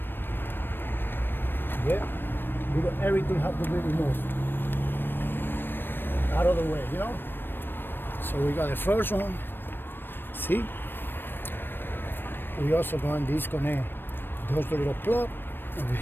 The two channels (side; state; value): right; late; 0.097 ms